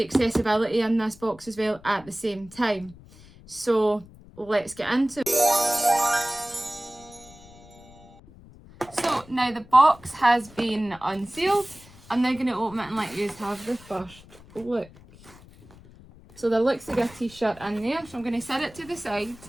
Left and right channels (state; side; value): noise; left; rumble, 22 dB below the sound